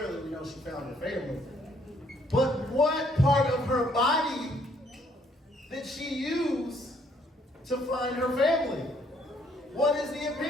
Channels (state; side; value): normal; both; correlation 0.66